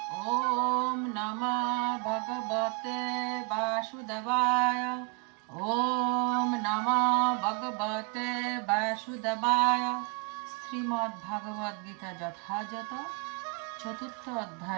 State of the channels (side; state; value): left; quieter; 32.4 dB